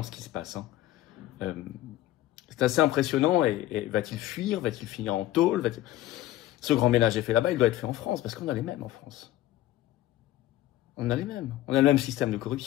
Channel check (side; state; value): right; quieter; 14.6 dB